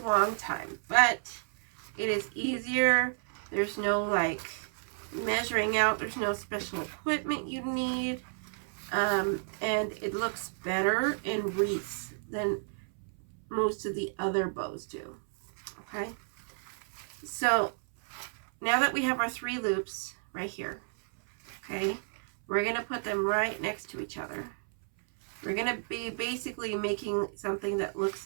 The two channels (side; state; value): left; silent; 57 dB below the other